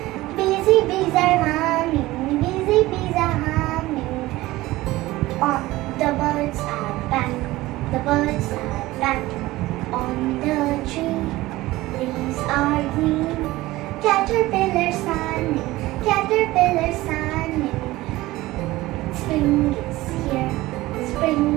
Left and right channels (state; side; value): quieter; left; 18.2 dB